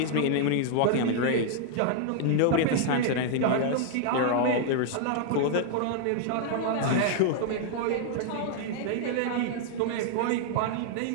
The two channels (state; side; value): different; both; correlation -0.01